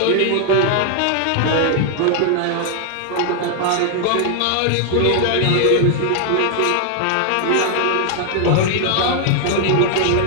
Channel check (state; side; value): different; both; correlation 0.00